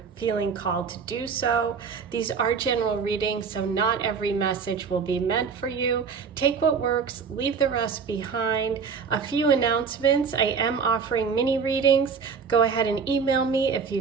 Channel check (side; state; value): left; quieter; 5.8 dB